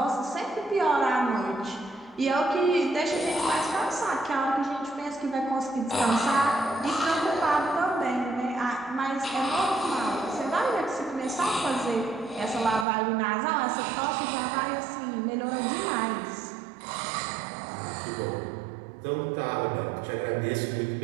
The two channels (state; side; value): drops out; left; at 12.9 s